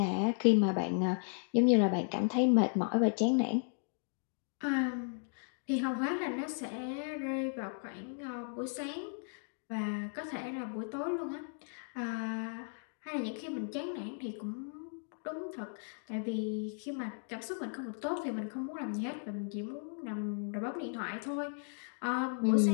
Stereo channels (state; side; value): silent; right; 54 dB below the other